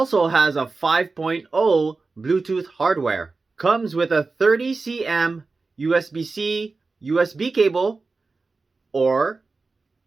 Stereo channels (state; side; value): quieter; left; 3.9 dB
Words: has a 5.0 Bluetooth hardware. Comes with a 30 cm USB-C USB cable or